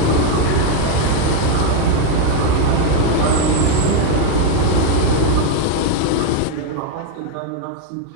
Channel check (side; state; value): both; different; correlation 0.01